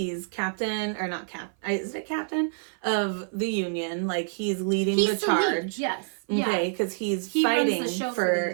captain, or not is it captain of the union? Like, he's leading the charge. Yes. Okay, because he fighting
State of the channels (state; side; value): silent; left; 55 dB below the other